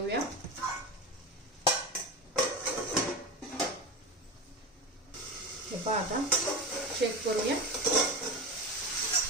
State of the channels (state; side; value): normal; both; correlation 0.24